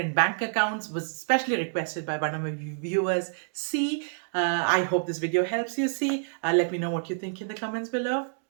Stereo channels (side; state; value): left; silent; digital silence